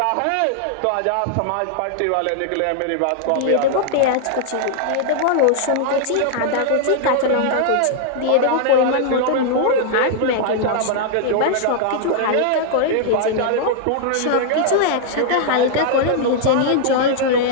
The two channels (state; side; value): different; both; correlation -0.01